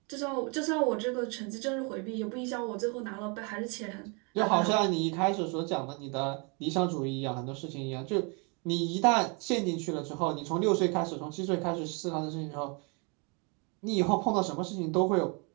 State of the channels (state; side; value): quieter; left; 33.6 dB